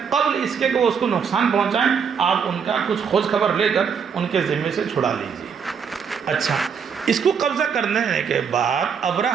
قبل اس کے کہ وہ اس کو نقصان پہنچائیں آپ ان کا کچھ کھوج خبر لے کر ان کے ذمے سے چھڑا لیجیے۔ اچھا، اس کو قبضہ کرنے کے بعد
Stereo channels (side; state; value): left; quieter; 6.7 dB